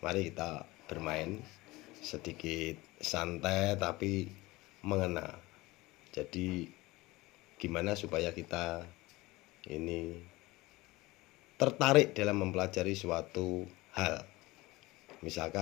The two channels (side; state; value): right; quieter; 20.7 dB